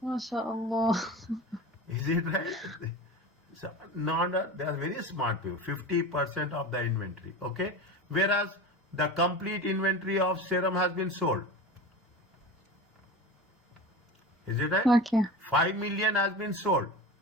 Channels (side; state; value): both; normal; correlation 0.30